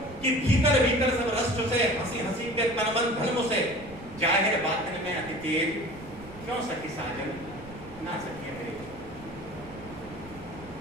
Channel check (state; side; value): noise; right; rumble, 18 dB below the sound